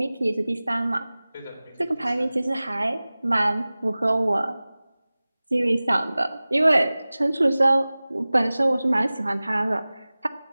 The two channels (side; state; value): both; inverted; correlation -0.98